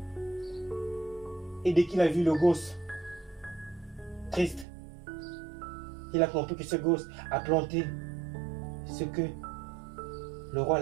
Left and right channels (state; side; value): drops out; left; at 4.7 s